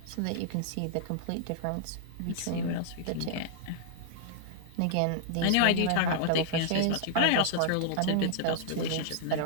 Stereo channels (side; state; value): both; different; correlation -0.01